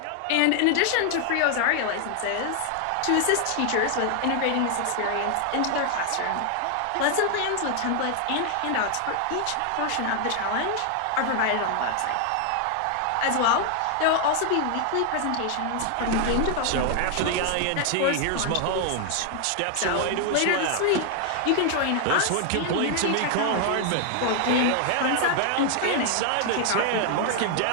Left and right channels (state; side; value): different; both; correlation 0.00